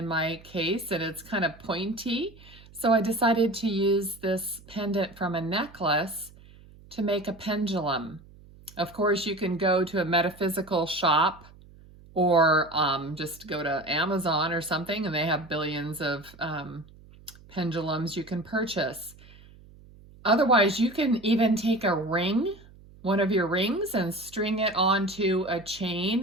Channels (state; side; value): noise; right; hum, 23 dB below the sound